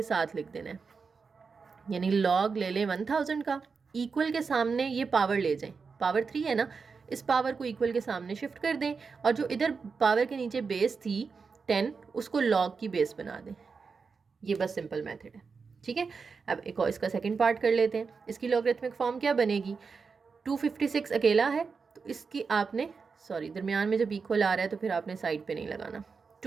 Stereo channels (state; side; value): quieter; left; 5.1 dB